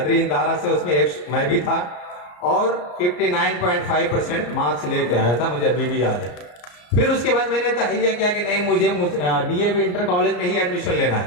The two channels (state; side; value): late; right; 34 ms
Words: इंदारा से, उसमें एक मैं भी था और 59.5% मार्क्स लेके आया था, मुझे अभी भी याद है। फिर उसके बाद मैंने तहैया किया कि नहीं, मुझे डीएवी इंटर कॉलेज में ही एडमिशन लेना